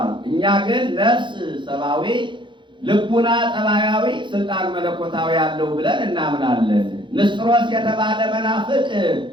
እኛ ግን ነፍስ ሰብአዊ፣ ልቡና ጠባያዊ፣ ስልጣን መለኮታዊ ያለው ብለን እናምናለን። ንስጥሮስ የተባለ መናፍቅ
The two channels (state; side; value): late; left; 0.23 ms